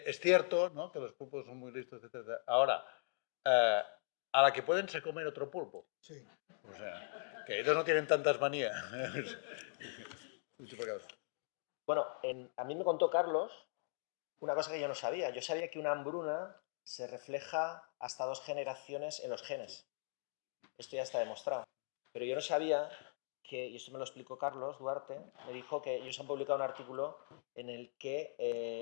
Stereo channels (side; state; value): right; silent; digital silence